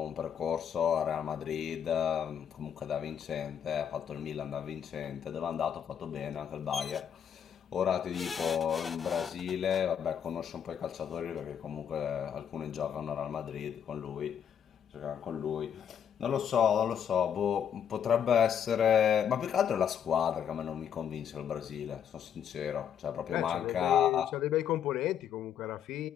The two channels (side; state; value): right; quieter; 8.5 dB